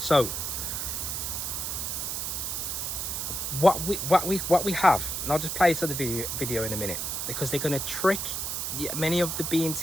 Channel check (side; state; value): right; noise; hiss, 2 dB below the sound